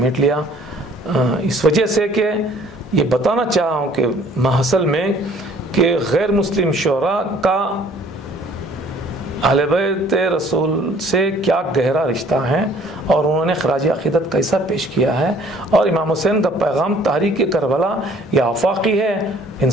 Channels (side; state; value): both; normal; correlation 0.56